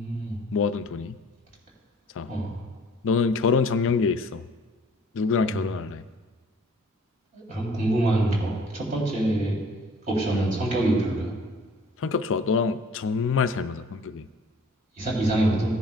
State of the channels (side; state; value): both; normal; correlation 0.54